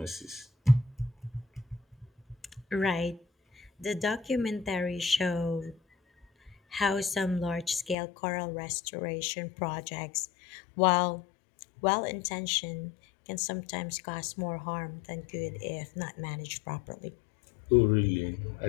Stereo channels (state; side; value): drops out; right; at 8.0 s